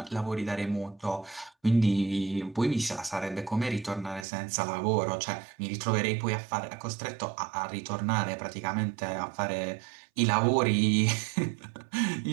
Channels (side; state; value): left; drops out; at 4.2 s